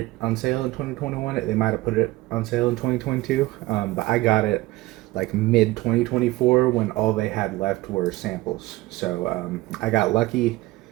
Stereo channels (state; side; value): quieter; left; 19.1 dB